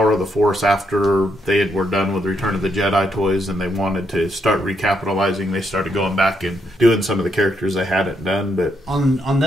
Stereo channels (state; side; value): normal; both; correlation 0.77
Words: Force, after they were done with Return of the Jedi toys and they wanted to start recapitalizing, they started going back and doing some of the characters they hadn't done. But on